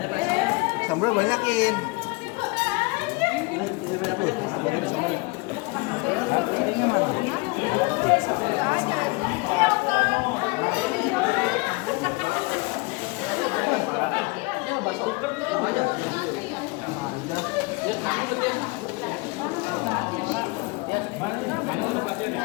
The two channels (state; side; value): quieter; right; 26.7 dB